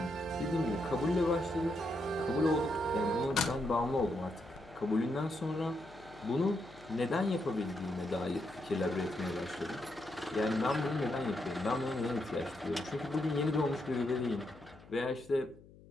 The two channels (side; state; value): left; noise; hum, 22 dB below the sound